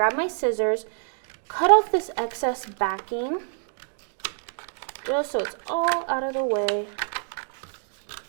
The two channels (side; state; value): left; silent; 59 dB below the other